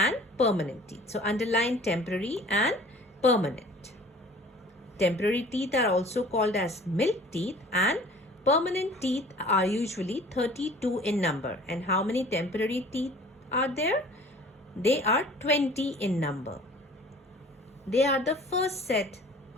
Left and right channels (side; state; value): both; normal; correlation 0.48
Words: permanent teeth. So underline temporary and permanent. Temporary teeth are also called as milk teeth and permanent teeth are usually 32 in number. And how many temporary teeth are there? They are 20 in number. They are the first set